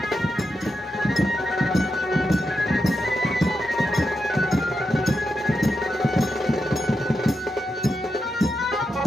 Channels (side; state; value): both; normal; correlation 0.86